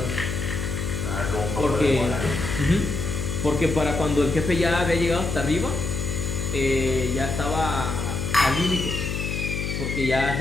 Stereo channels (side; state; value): left; noise; hum, 3 dB below the sound